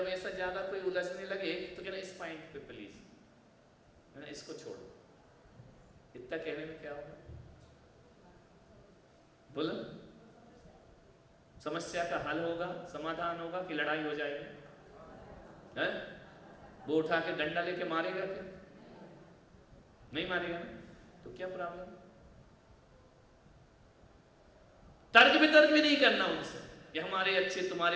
ऐसा ज्यादा कोई उलझने लगे तो कहना इस पॉइंट पे प्लीज, है ना, इसको छोड़ो। इतना कहने में क्या होगा? बोलो, समस्या का हल होगा, समाधान होगा कि लड़ाई हो जाएगी? है? वो उठा के डंडा लेके मारेगा क्या? नहीं मारेगा ना, तो क्या प्रॉब्लम? तर्क वितर्क भी नहीं करना उनसे, ये हमारे अच्छे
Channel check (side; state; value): both; identical; correlation 1.00